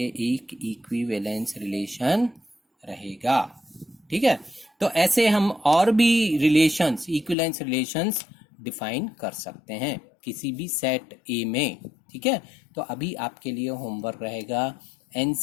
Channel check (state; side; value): drops out; right; at 7.4 s